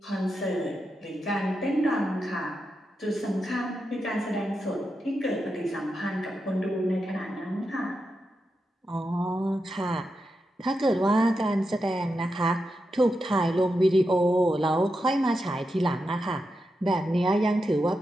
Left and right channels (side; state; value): both; normal; correlation 0.87